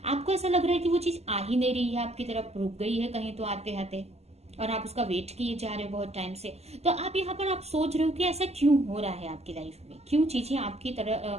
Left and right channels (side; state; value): left; late; 0.30 ms